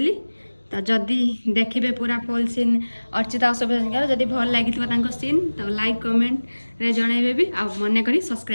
ତ ଯଦି ଦେଖିବେ ପୁରା ଫୁଲ୍ ସିନ୍ ଅର୍ଚ୍ଚିତା ଅଶୋକଙ୍କର ଯଦି ଭଲ ଲାଗିଥିବ ତାଙ୍କ ସିନ୍ ତ ଲାଇକ୍ କମେଣ୍ଟରେ ଜଣାଇବେ ବି ଆଉ ମନେ କରି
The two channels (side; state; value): both; inverted; correlation -1.00